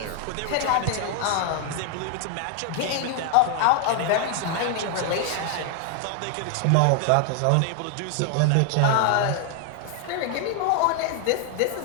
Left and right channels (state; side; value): different; both; correlation 0.00